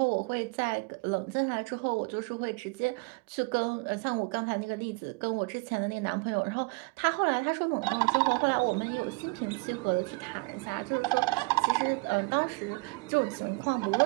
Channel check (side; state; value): left; quieter; 28.0 dB